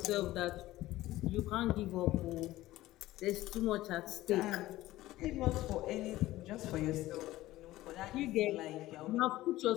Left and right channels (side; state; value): right; quieter; 16.4 dB